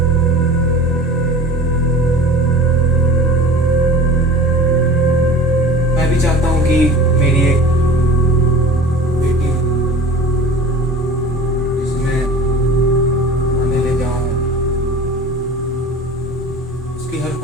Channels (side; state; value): both; normal; correlation 0.39